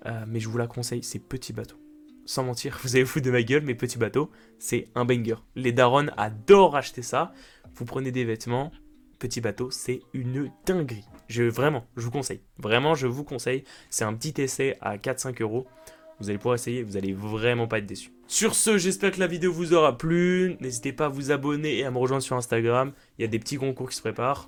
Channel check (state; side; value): identical; both; correlation 1.00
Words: mais je vous la conseille, c'est Petit Bateau. Sans mentir, vous allez vous foutre de ma gueule, mais Petit Bateau, c'est un banger. Les darons adorent acheter ça. Vous prenez des vêtements, Petit Bateau, c'est une dinguerie. Vraiment, je vous conseille. Vraiment, je vous conseille. C'est un petit essai à 4-5 euros. Vous allez pouvoir essayer, vous allez vraiment pas être déçus. Sur ce, j'espère que la vidéo vous aura plu. N'hésitez pas à vous abonner et à me rejoindre sur Instagram. Il y a des petits concours qui se préparent.